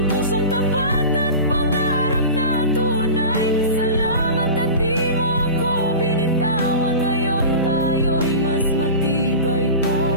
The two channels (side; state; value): both; inverted; correlation -0.32